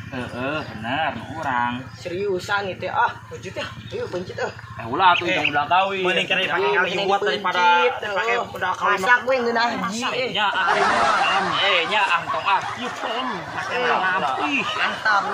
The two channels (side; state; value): both; identical; correlation 1.00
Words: Bener nu urang. Seriusan itu Pencit ya. Ayo pencit Ulah atuh yang modal kawin. Mending kali pakai kali buat daripada pakai udah kawin. Masak gue ngeunah Haji. Nya nya tong Yuk pakai malam. Ih, Mantap